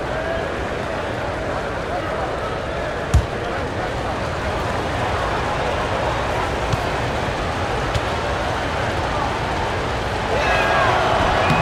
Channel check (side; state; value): both; identical; correlation 1.00